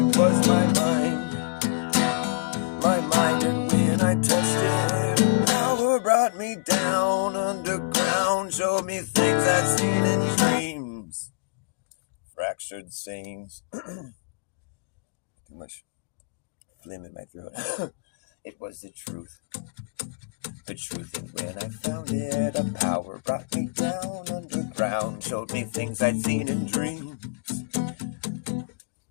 was my mind. My mind, and when I touched it, a power brought me down underground, showed me things I'd seen in dreams. Fractured sayings. Too much phlegm in my throat. It was the truth. The truth, and when I found it, a power brought me down underground, showed me things I'd seen in dreams.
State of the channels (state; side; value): quieter; right; 31.0 dB